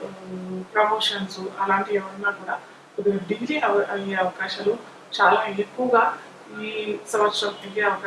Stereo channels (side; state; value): both; identical; correlation 1.00